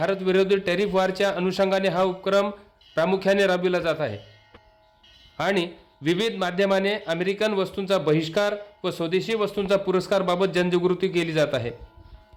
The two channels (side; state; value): both; identical; correlation 1.00